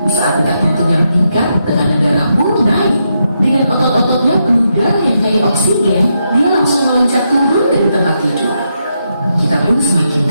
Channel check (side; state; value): both; inverted; correlation -0.82